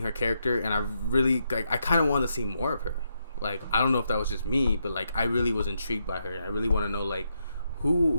her character, and I really I kind of want to see more of her. Like, I don't know if that was just me, but like I really was intrigued by her. I really want to know like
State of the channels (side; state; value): both; inverted; correlation -0.81